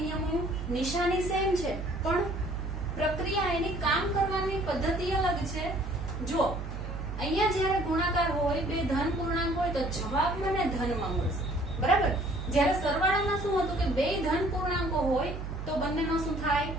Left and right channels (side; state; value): right; noise; hum, 6 dB below the sound